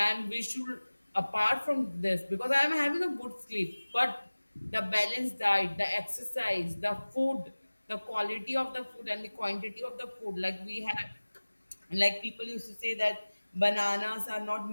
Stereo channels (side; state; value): both; inverted; correlation -1.00